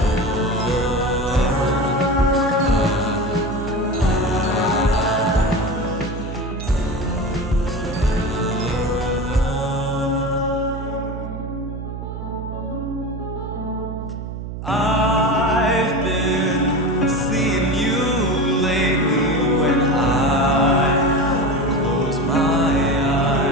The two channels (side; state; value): right; noise; hum, 8 dB below the sound